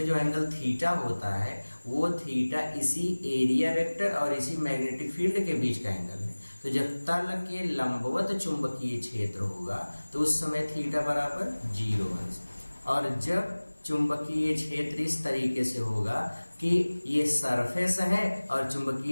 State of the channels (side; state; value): both; inverted; correlation -1.00